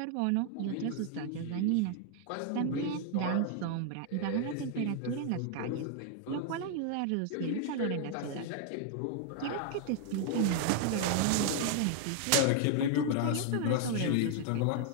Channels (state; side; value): different; both; correlation 0.00